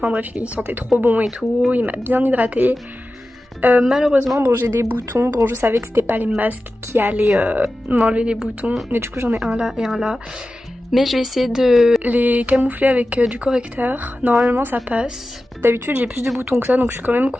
bref, il sentait trop bon et tout, il m'a bien hydratée. Malheureusement bon j'ai des boutons, bon je savais que c'était pas les masques qui allaient m'enlever les boutons. Mais du coup j'en ai un là et un là. Mais je vais essayer de les camoufler avec du correcteur. Normalement ça passe. D'habitude j'ai plus de boutons que ça donc je suis quand même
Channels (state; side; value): normal; both; correlation 0.94